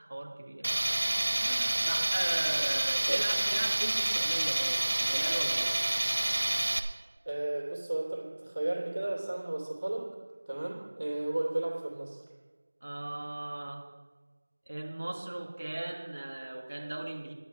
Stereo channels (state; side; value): inverted; both; correlation -1.00